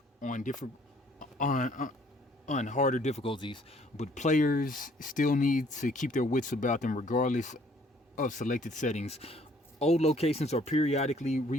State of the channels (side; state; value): both; normal; correlation 0.61